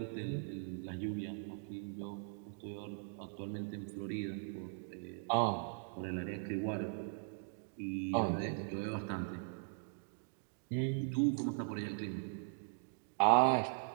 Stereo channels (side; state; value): left; silent; digital silence